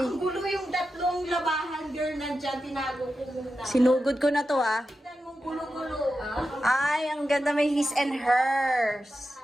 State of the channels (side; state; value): both; normal; correlation 0.90